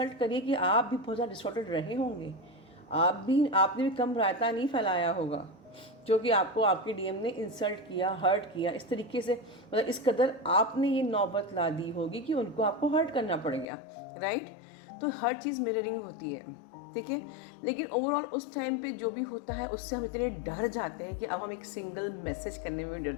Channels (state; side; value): drops out; right; at 13.7 s